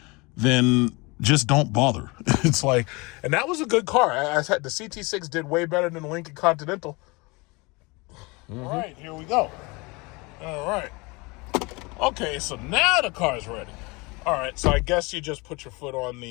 then just don't bother. It's like, and that was a good car. I said the CT6 did way better than the Lincoln Continental. Mm-hmm. All right, here we go. All right. Okay, so now the car's ready. All right, so I guess you just put your foot on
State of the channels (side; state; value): right; quieter; 26.2 dB